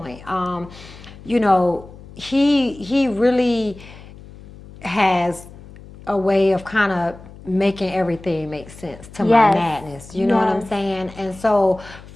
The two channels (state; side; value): noise; left; hum, 19 dB below the sound